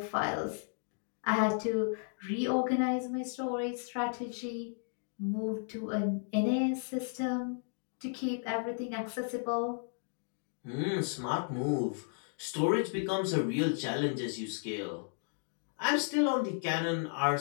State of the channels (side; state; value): right; silent; 55 dB below the other